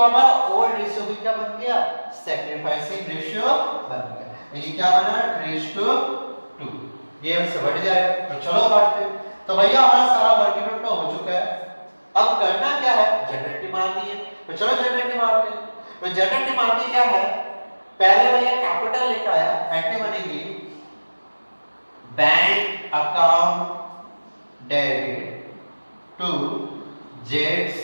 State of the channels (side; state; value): both; inverted; correlation -1.00